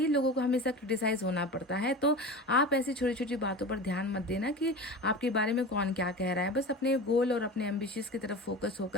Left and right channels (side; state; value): both; normal; correlation 0.31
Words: लोगों को हमेशा क्रिटिसाइज होना पड़ता है। तो आप ऐसी छोटी छोटी बातों पर ध्यान मत देना कि आपके बारे में कौन क्या कह रहा है। बस अपने गोल और अपने एम्बिशियस की तरफ फोकस